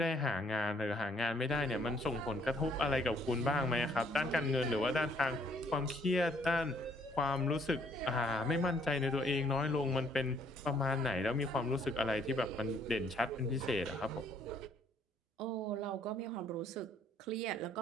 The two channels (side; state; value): both; normal; correlation 0.64